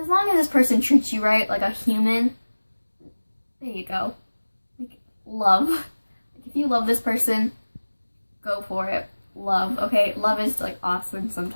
long as this person treats you right, like a human, there you go. Like, love. Like, if you love this person, go for it. Love, okay? Love is, like, awesome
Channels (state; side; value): inverted; both; correlation -1.00